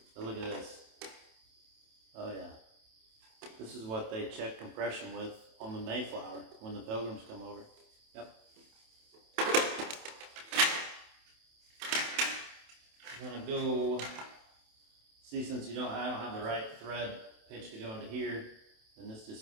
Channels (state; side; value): late; left; 27 ms